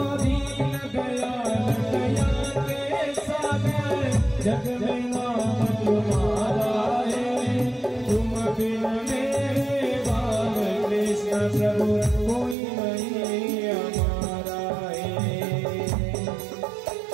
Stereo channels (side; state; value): left; drops out; at 12.6 s